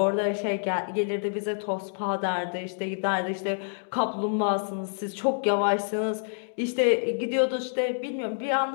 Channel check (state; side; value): silent; right; digital silence